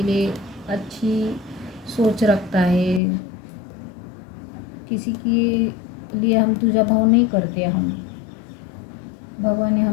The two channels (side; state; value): right; drops out; at 3.0 s